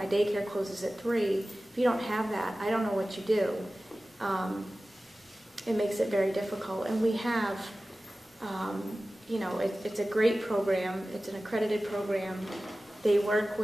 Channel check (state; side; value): normal; both; correlation 0.96